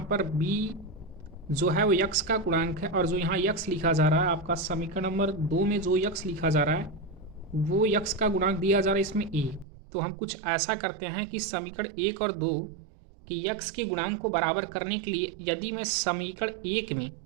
पर बी जो है वो यक्स का गुणांक है और जो यहाँ यक्स लिखा जा रहा है आपका समीकरण नंबर 2 में जो यक्स लिखा जा रहा है वो यक्स का गुणांक दिया जा रहा है इसमें ए। तो हम कुछ ऐसा करते हैं कि समीकरण 1 और 2 की यक्स के गुणांक को बराबर करने के लिए यदि मैं समीकरण 1 में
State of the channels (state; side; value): drops out; left; at 9.7 s